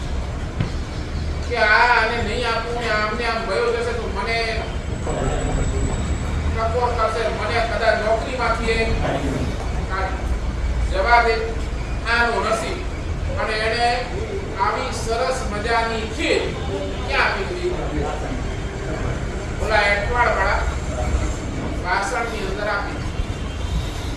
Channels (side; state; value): both; identical; correlation 1.00